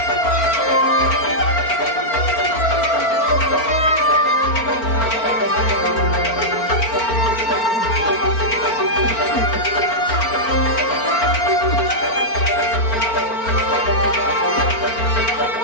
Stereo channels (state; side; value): late; right; 4.4 ms